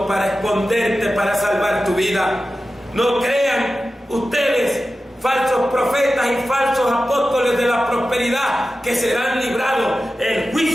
para esconderte, para salvar tu vida. No crean ustedes, falsos profetas y falsos apóstoles de la prosperidad, que serán librados. El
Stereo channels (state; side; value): normal; both; correlation 0.93